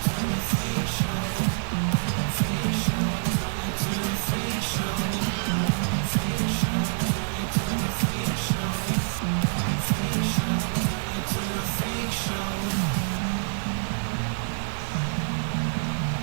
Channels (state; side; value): silent; left; 61 dB below the other